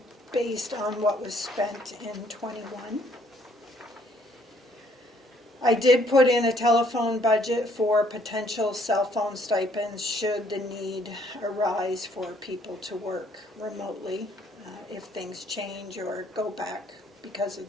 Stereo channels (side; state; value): both; normal; correlation 0.64